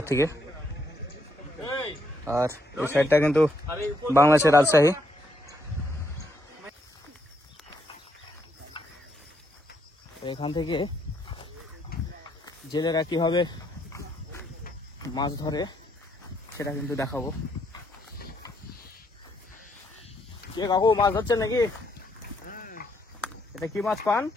থেকে। আর এই সাইডটা কিন্তু বাংলাদেশের রাজশাহী। এখান থেকে জেলেরা কিভাবে মাছ ধরে সেটা কিন্তু দেখাবো। কে কাকু মাছ ধরছেন নাকি? এটা কি মাছ পান?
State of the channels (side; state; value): both; normal; correlation 0.74